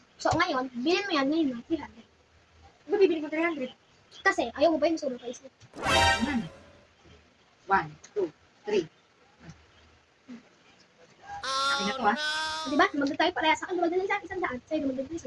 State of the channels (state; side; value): identical; both; correlation 1.00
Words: So, ngayon, bilhin mo yan ngayon na 300. Ano bibili ko 300? Kasi, ayaw mo ba yung sobrang price? 1, 2, 3. Akin na to ha. Diba? Magdala tayo pareha sa akin. Magdala sa akin 100. Sa'yo, magdala 100. 1,